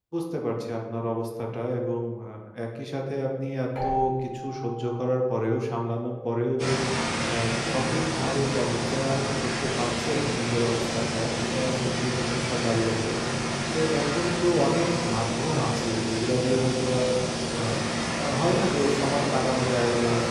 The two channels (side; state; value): both; identical; correlation 1.00